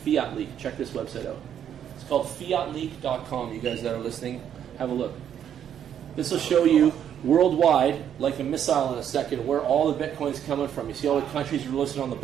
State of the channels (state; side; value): quieter; left; 9.4 dB